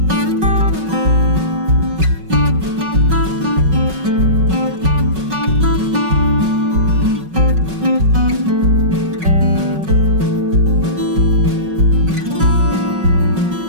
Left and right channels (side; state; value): left; late; 5.4 ms